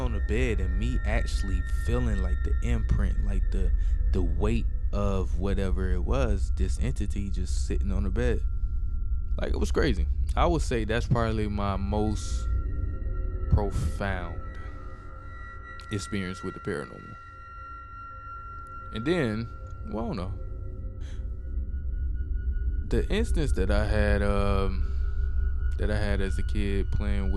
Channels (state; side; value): identical; both; correlation 1.00